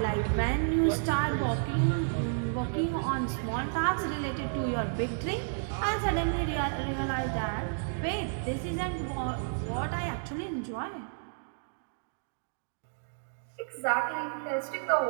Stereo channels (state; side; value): silent; left; digital silence